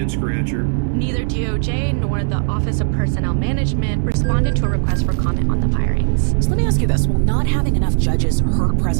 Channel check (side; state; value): left; silent; digital silence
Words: scratcher. Neither DOJ nor the Office of Personnel Management responded to a request for comment on the firings. So let me ask you this. Will not having enough judges hurt